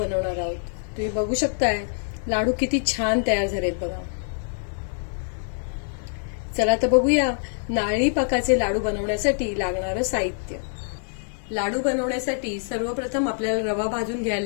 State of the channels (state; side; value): silent; right; digital silence